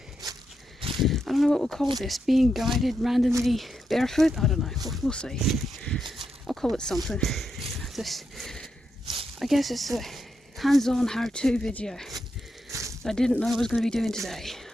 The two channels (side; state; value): both; normal; correlation 0.84